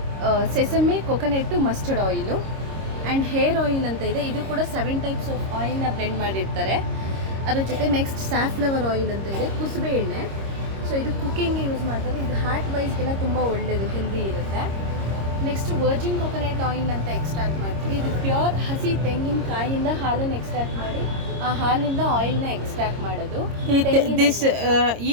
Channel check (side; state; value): left; late; 26 ms